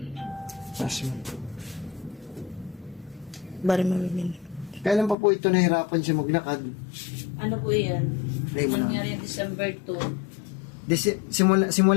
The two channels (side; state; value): right; drops out; at 5.2 s